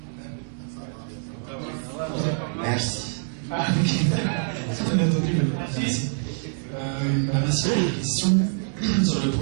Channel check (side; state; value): left; silent; 61 dB below the other